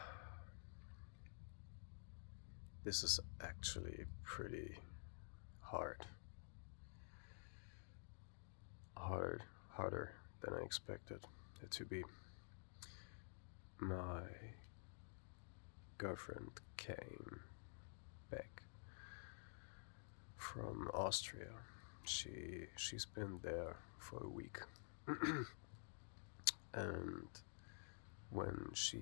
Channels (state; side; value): silent; right; digital silence